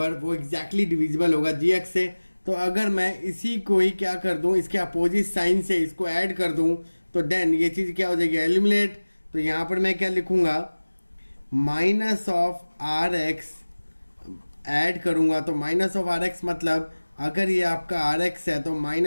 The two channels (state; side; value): inverted; both; correlation -1.00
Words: वो एग्जैक्टली डिविजिबल होगा gx से। तो अगर मैं इसी को ही क्या कर दूँ, इसके अपोजिट साइन से इसको ऐड कर दूँ तो देन ये चीज़ क्या हो जाएगी, एलिमिनेट। तो यहाँ पर मैं क्या लिखूँगा, minus of r x add करूँगा। तो माइनस ऑफ आर एक्स मतलब अगर ये आपका आर एक्स है तो